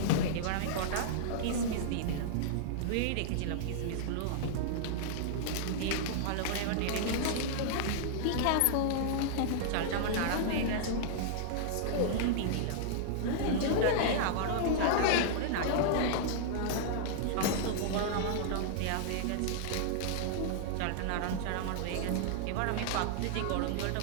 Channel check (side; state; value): both; different; correlation -0.01